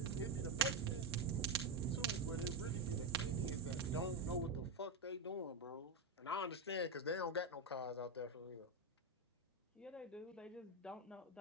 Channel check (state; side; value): quieter; left; 3.1 dB